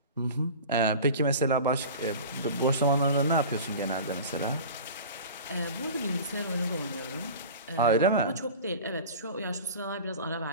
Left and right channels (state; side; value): inverted; both; correlation -0.36